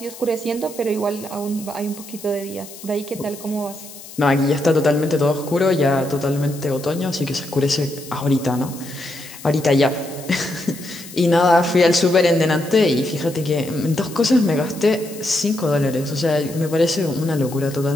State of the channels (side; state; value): left; noise; hiss, 16 dB below the sound